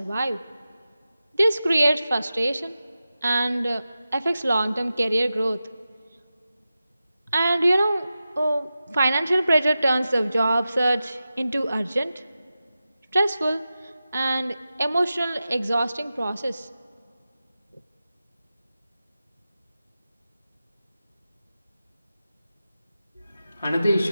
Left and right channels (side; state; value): both; inverted; correlation -0.93